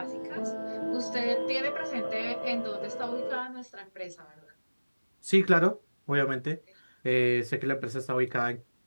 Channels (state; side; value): inverted; both; correlation -1.00